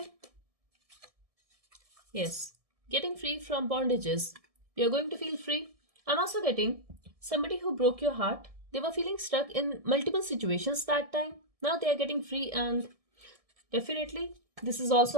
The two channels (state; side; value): late; left; 1.7 ms